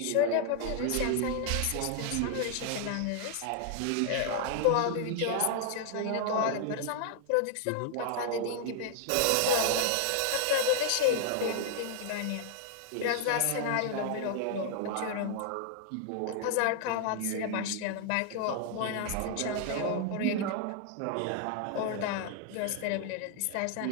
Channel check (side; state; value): both; different; correlation 0.00